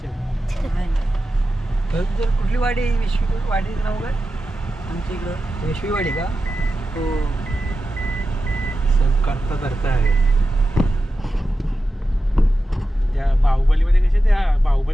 जर कुठली वाडी वाडी नाव काय आमच्या इकडं विश्वीवाडी का हो सब करता आहे त्या बाहुबलीमध्ये कसे त्या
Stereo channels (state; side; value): normal; both; correlation 0.92